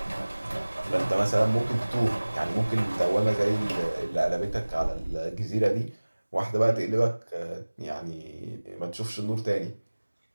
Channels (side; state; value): both; inverted; correlation -1.00